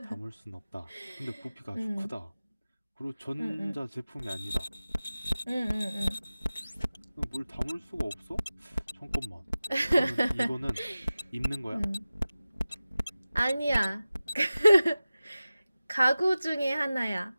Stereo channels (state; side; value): inverted; both; correlation -0.96